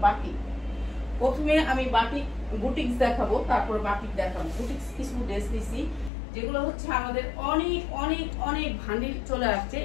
বাটিক। প্রথমে আমি বাটিক বুটিক্স দেখাবো, তারপরে বাটিক দেখাবো। বুটিক্স কিছু ড্রেস নিচ্ছি যেগুলো হচ্ছে আমাদের অনেক অনেক অনেক ভান্ডিল চলে আসছে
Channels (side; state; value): right; drops out; at 6.1 s